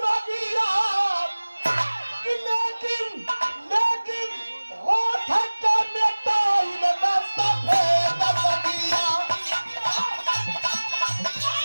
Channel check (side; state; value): both; inverted; correlation -1.00